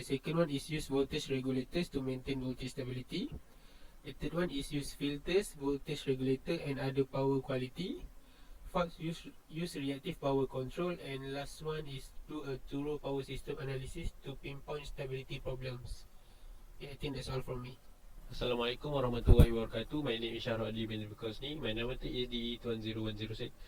second one is use voltage regulators to maintain voltage stability. The third one is use filters, voltage regulator and other power quality. Fourth, use reactive power control, and last one is do a thorough power system analysis to pinpoint stability problems. Yeah, I think that's all from me. Assalamualaikum warahmatullahi wabarakatuh. My name is Shahrul Adli bin Bukosni. My number is DE20106.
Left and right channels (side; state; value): both; identical; correlation 1.00